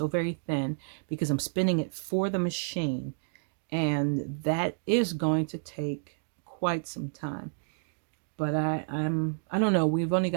very thin because I'm spinning it for the machine, and that is going to take quite some time. But I don't know. We've only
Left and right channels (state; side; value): silent; left; digital silence